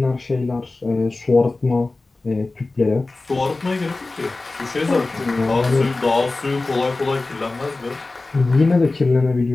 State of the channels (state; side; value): quieter; right; 3.3 dB